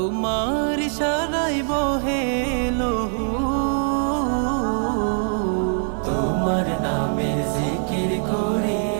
ইশারায় বহে লহু। তোমার নামের জিকির করি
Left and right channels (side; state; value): left; silent; 58 dB below the other